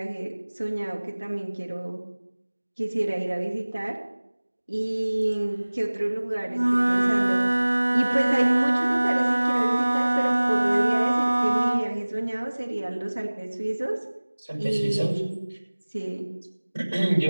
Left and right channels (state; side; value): inverted; both; correlation -1.00